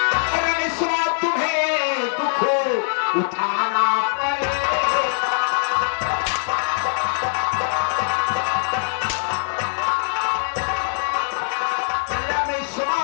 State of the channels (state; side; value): silent; right; 57 dB below the other